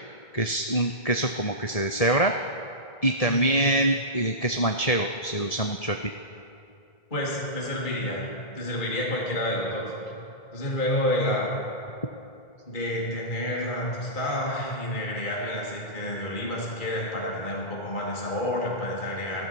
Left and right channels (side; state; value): right; late; 1.7 ms